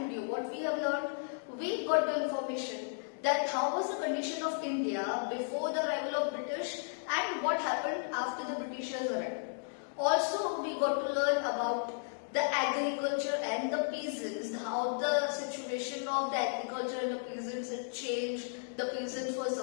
what we have learned, we got the information that how was the condition of India before the arrival of British and what happened after the Britishers arrived. Also we got to learn about the agriculture and the peasants, how the situation of the agriculture and the peasants had changed. The peasants were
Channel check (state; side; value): silent; right; digital silence